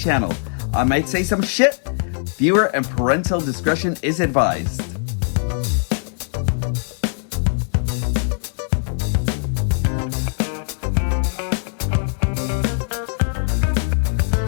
I might say some shit. Viewer and parental discretion is advised.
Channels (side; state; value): right; silent; 65 dB below the other